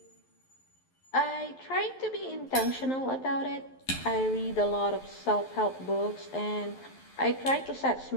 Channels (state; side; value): late; right; 11 ms